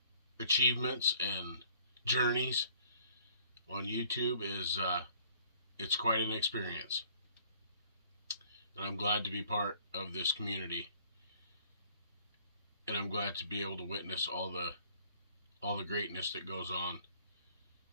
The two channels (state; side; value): inverted; both; correlation -0.58